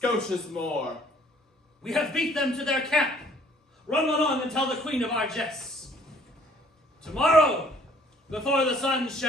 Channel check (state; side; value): normal; both; correlation 0.58